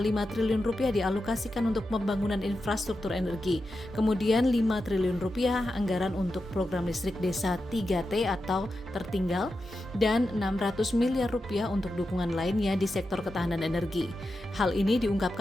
triliun rupiah dialokasikan untuk pembangunan infrastruktur energi. Kemudian 5 triliun rupiah anggaran untuk program listrik desa 3T atau tertinggal, dan 600 miliar rupiah untuk dukungan lainnya di sektor ketahanan energi. Hal ini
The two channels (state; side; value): normal; both; correlation 0.89